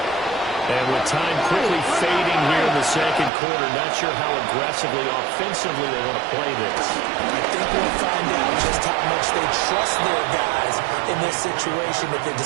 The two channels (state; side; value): drops out; left; at 3.3 s